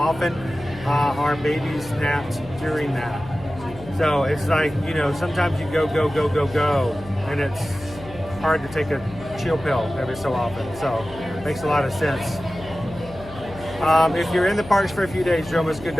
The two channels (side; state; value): left; noise; hum, 17 dB below the sound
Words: our babies napped during that. So it's like, you know, sometimes you go, and it's hard to take a chill pill every so often. So it makes a lot of sense. If you're in the parks for a few days, Jomas Good